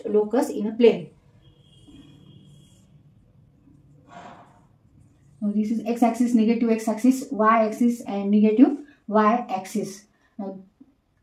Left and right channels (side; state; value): both; identical; correlation 1.00